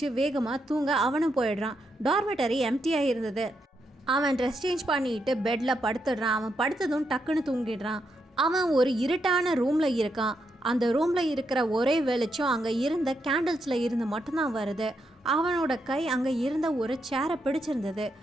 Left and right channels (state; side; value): normal; both; correlation 0.81